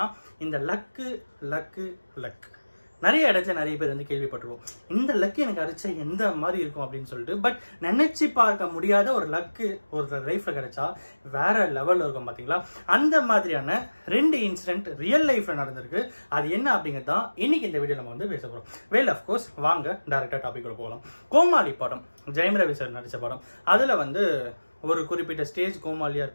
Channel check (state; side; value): inverted; both; correlation -1.00